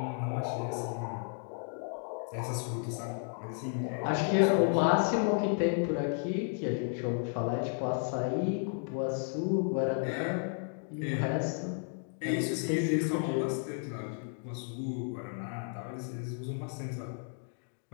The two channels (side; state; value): right; silent; 56 dB below the other